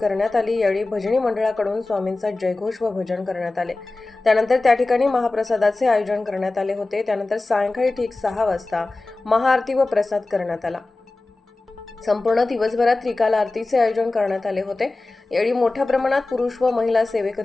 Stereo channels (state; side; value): quieter; right; 3.2 dB